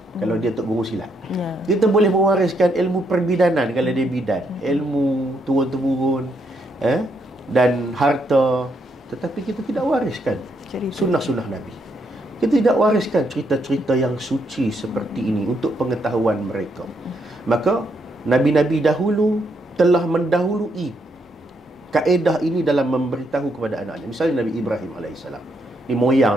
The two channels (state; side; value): normal; both; correlation 0.76